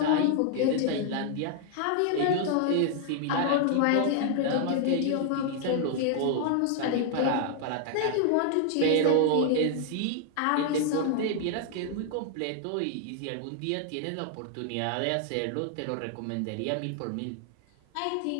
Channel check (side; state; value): both; different; correlation 0.00